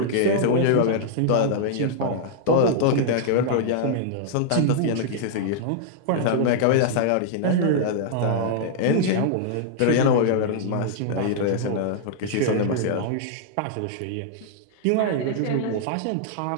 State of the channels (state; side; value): different; both; correlation -0.01